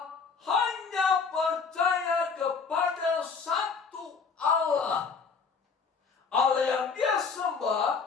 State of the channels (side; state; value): right; quieter; 5.4 dB